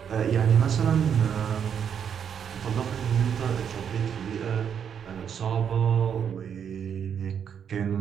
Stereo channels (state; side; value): quieter; left; 7.9 dB